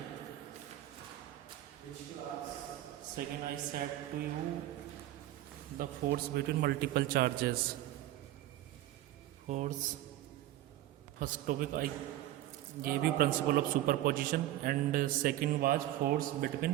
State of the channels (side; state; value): left; quieter; 14.5 dB